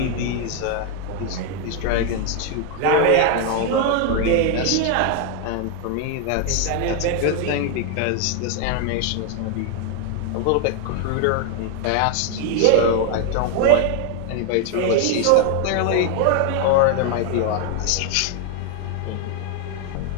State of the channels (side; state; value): both; different; correlation 0.00